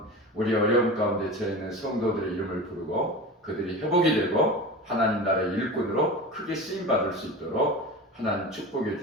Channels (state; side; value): normal; both; correlation 0.30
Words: 우리 어려움 가운데 처해있는 성도들의 이름을 부르고 그들이 회복이 되고 하나님 나라의 일꾼으로 크게 쓰임받을 수 있도록 하나님 축복해